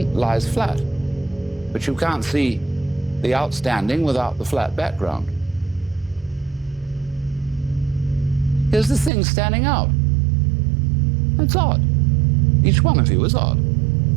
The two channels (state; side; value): drops out; left; at 9.1 s